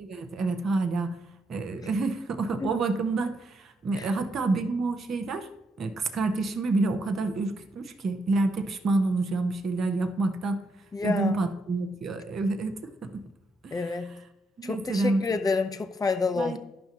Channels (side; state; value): both; normal; correlation 0.79